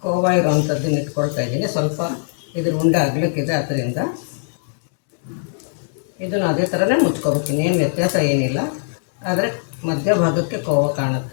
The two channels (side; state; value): right; silent; digital silence